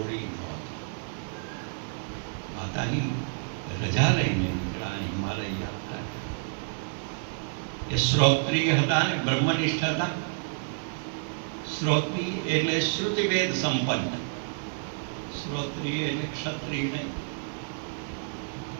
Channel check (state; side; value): silent; left; digital silence